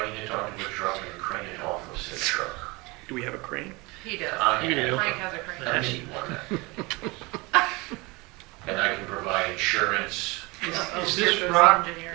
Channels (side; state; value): left; quieter; 24.8 dB